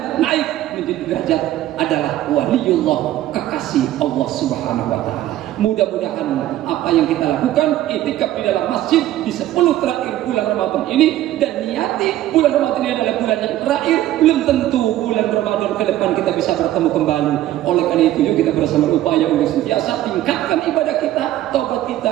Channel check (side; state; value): left; quieter; 13.9 dB